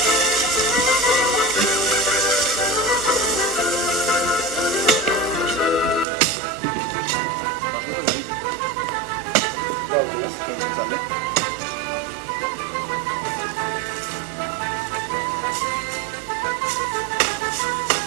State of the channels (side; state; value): left; drops out; at 6.1 s